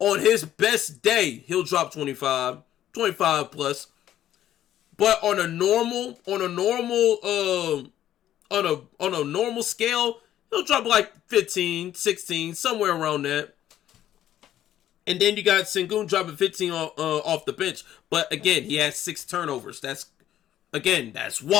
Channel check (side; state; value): right; quieter; 12.0 dB